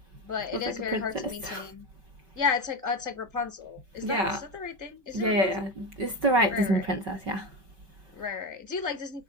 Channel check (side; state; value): left; late; 5.3 ms